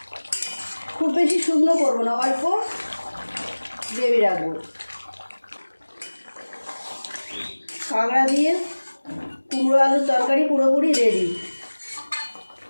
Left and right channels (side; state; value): both; inverted; correlation -1.00